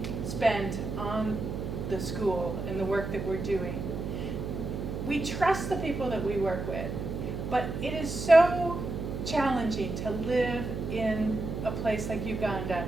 spent on the school and the work that we're doing. We trust the people that we work with, but it is so challenging to live in a place like Uganda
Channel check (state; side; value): noise; right; hum, 5 dB below the sound